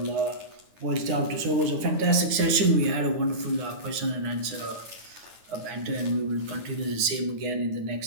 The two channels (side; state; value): left; late; 9.7 ms